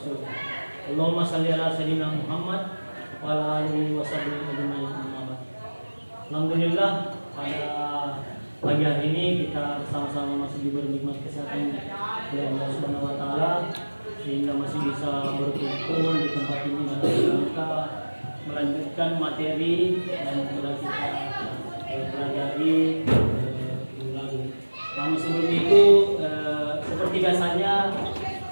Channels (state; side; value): inverted; both; correlation -1.00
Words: Allahumma shalli ala sayyidina Muhammad wa ala alihi wa sahbihi ajma'in. Alhamdulillah, pada pagi hari ini kita bersama-sama masih diberi nikmat kesehatan oleh Allah Subhanahu wa taala sehingga masih bisa berkumpul di tempat ini dan kita melanjutkan materi yang telah kita pelajari ulang. Namun sebelum itu seperti biasanya